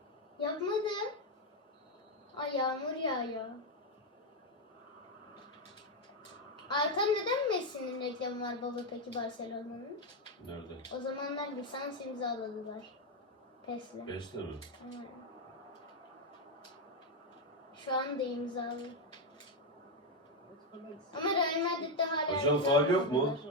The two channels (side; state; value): both; normal; correlation 0.05